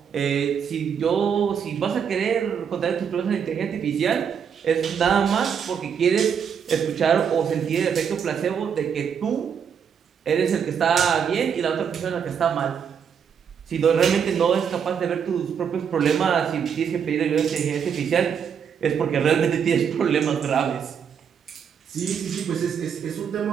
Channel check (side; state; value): left; quieter; 7.4 dB